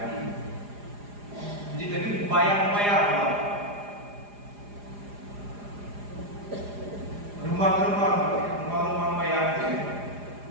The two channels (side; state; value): left; late; 4.9 ms